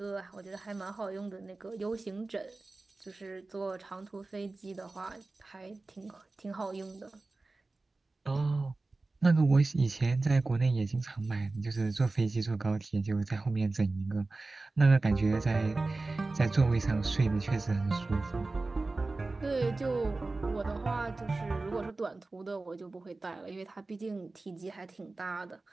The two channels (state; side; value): quieter; left; 3.3 dB